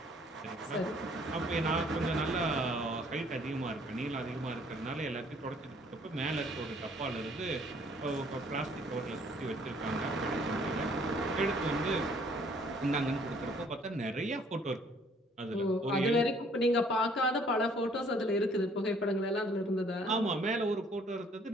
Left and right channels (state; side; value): normal; both; correlation 0.60